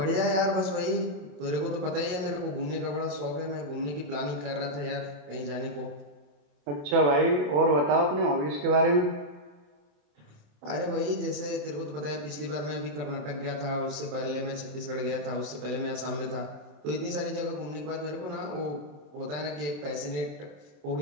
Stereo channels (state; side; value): late; left; 27 ms